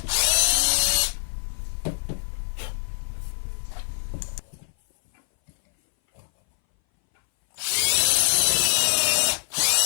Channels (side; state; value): right; silent; 60 dB below the other